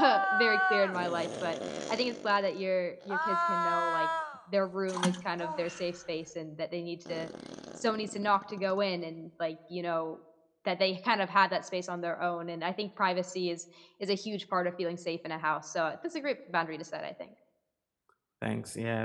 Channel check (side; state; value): both; identical; correlation 1.00